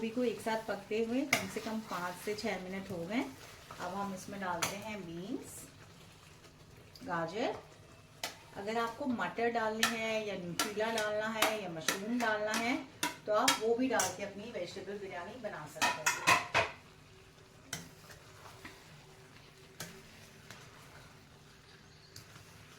को एक साथ पकते हुए कम से कम 5 से 6 मिनट हो गए। अब हम इसमें डालते हैं बीन्स, गाजर। अगर आपको मटर डालनी है या न्यूट्रीला डालना है या मशरूम डालना है तो आप वो भी डाल के अपनी वेजिटेबल बिरयानी बना सकते हैं।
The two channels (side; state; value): both; identical; correlation 1.00